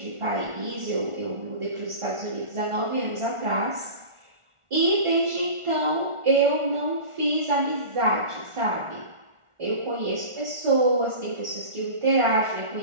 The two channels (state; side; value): late; left; 1.4 ms